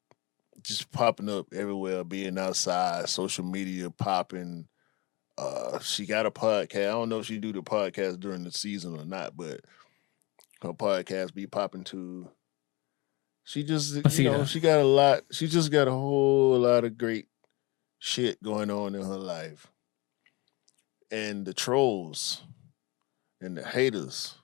Just popping up everywhere, being outside, social media popping. She got a podcast. I don't know if she do the podcast during the season or not, but her podcast be popping too. She just, she got a lot. She just got a whole lot of great shit going on in her life. And the trolls and the haters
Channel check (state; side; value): quieter; right; 25.1 dB